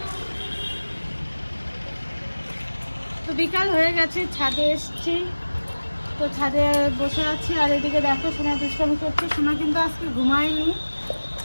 তো বিকাল হয়ে গেছে, ছাদে এসেছি, তো ছাদে বসে আছি। আর এদিকে দেখো সোনা দুষ্টামি করছে। সোনা কিন্তু আজকে ঘুমায়নি,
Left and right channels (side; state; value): both; inverted; correlation -1.00